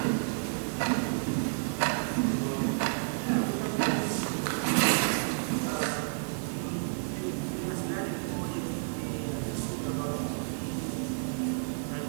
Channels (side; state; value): left; silent; digital silence